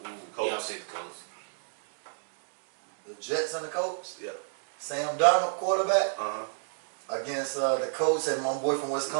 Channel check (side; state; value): left; silent; digital silence